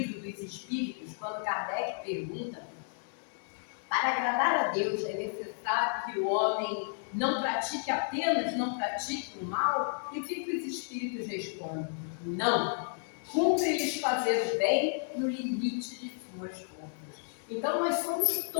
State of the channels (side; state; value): right; silent; digital silence